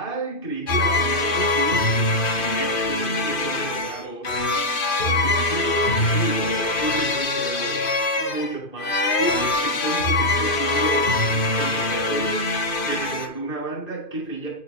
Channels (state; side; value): late; right; 2.5 ms